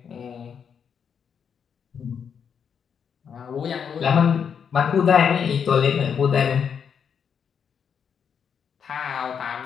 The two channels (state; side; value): quieter; right; 7.2 dB